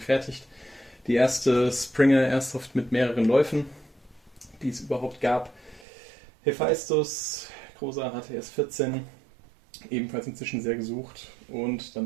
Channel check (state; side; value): drops out; left; at 5.9 s